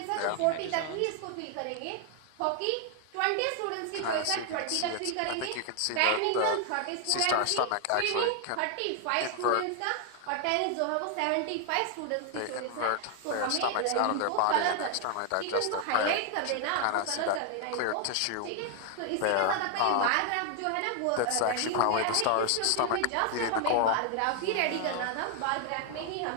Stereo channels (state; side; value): different; both; correlation 0.00